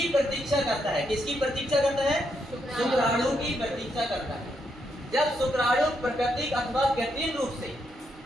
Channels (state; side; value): normal; both; correlation 0.79